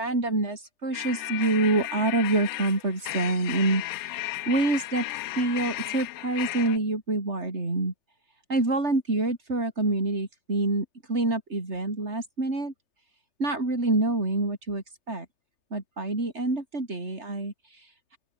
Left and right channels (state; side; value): late; left; 3.3 ms